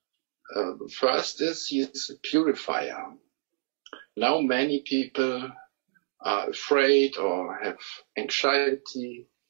The first is he is a purifier. Now many people are afraid or have anxiety,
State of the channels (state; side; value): silent; left; digital silence